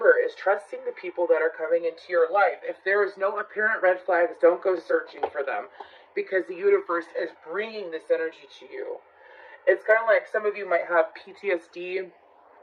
is trusting the people that are coming into your life. If there is no apparent red flags, don't go searching for them, because the universe is bringing this energy to you. It's kind of like some of you might have PTSD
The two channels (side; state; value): both; identical; correlation 1.00